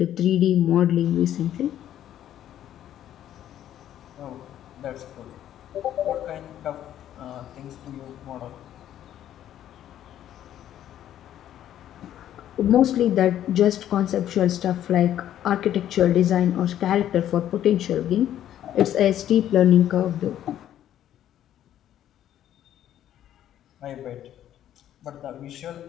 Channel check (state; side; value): quieter; right; 11.4 dB